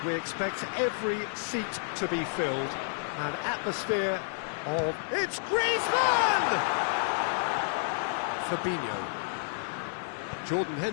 we expect every seat to be filled. An atmosphere of... It's Griezmann! Fabinho. Jordan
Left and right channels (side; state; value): right; silent; digital silence